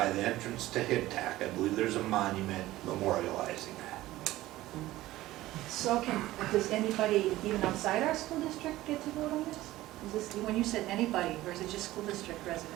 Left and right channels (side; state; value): left; quieter; 16.4 dB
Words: the entrance to HIPTAC. I believe there's a monument memorializing that. So does anybody, even outside our school district, get to vote on this? Is this, when you said anybody, or is it just school district